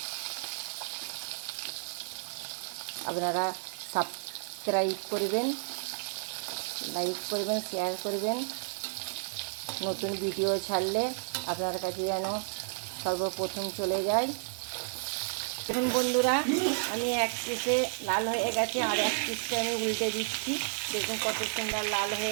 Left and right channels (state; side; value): silent; left; digital silence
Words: আপনারা সাবস্ক্রাইব করবেন, লাইক করবেন, শেয়ার করবেন। নতুন ভিডিও ছাড়লে আপনার কাছে যেন সর্বপ্রথম চলে যায়। দেখুন বন্ধুরা, আমি এক পিসে লাল হয়ে গেছে, আর এক পিসটা আমি উল্টে দিচ্ছি। দেখুন কত সুন্দর লাল